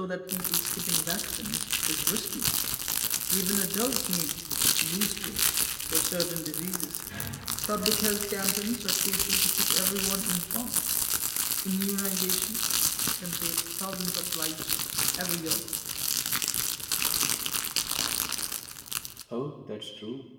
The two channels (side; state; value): both; identical; correlation 1.00